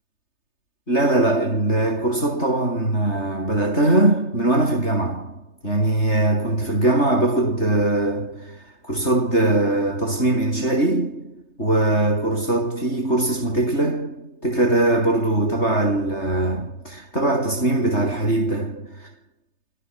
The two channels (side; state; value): right; late; 3.3 ms